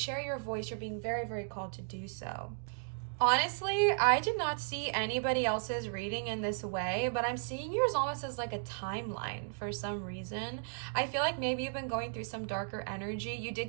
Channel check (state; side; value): silent; left; digital silence